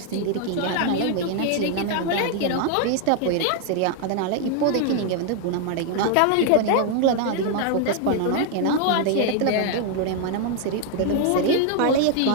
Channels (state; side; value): different; both; correlation 0.00